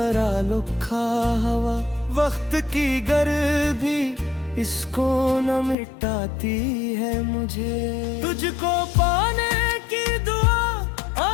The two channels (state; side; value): drops out; right; at 5.8 s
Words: लिखा हवा, वक्त की गर्मी इसको न मिटाती है मुझे। तुझको पाने की दुआ